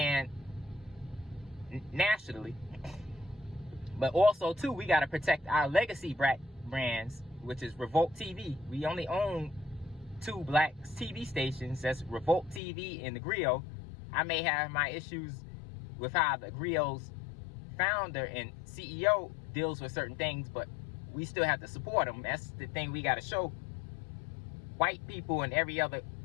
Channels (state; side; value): drops out; right; at 12.6 s